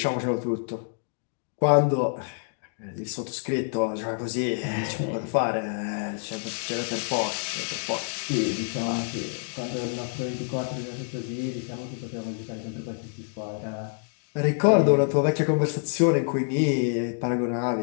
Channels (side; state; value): right; silent; digital silence